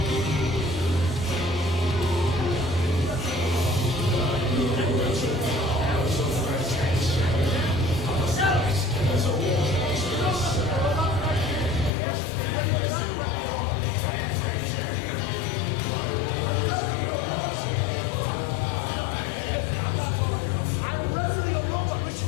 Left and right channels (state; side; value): drops out; right; at 11.9 s